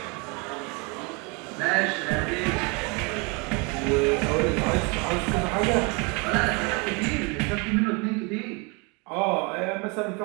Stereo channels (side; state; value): left; quieter; 30.6 dB